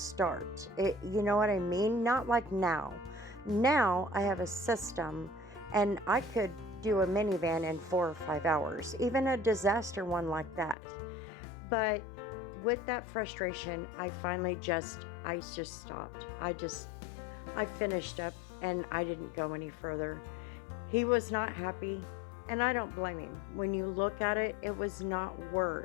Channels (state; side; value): drops out; right; at 10.8 s